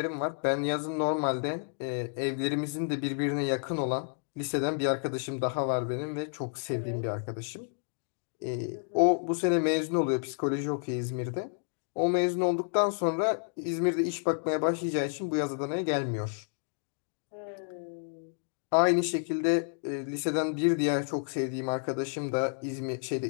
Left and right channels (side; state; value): right; silent; digital silence